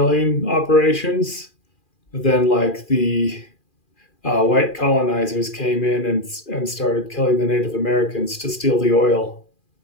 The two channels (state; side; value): late; right; 2.4 ms